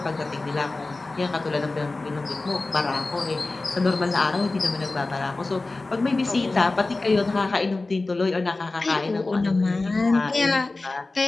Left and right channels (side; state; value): right; quieter; 3.3 dB